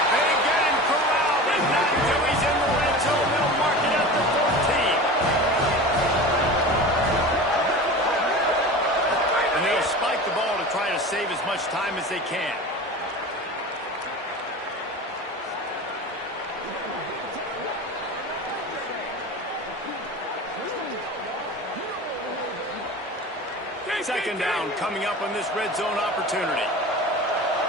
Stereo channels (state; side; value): normal; both; correlation 0.33